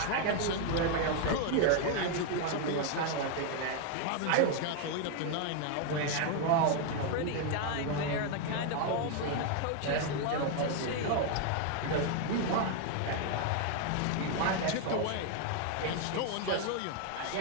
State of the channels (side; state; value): both; different; correlation 0.00